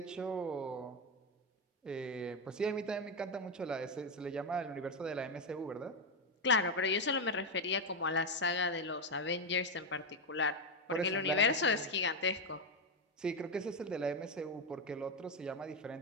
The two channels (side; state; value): both; normal; correlation 0.08